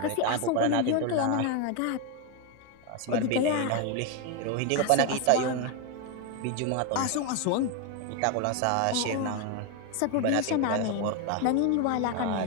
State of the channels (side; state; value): both; different; correlation 0.01